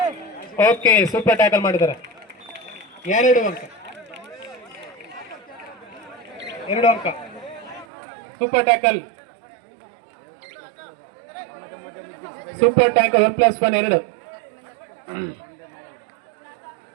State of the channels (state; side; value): drops out; left; at 7.9 s